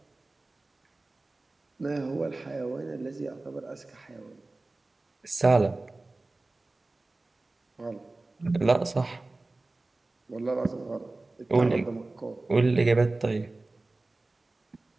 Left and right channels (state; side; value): quieter; left; 3.1 dB